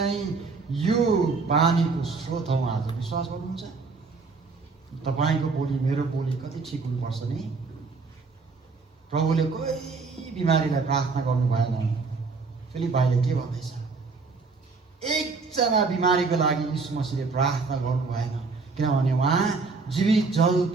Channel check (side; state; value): left; quieter; 4.3 dB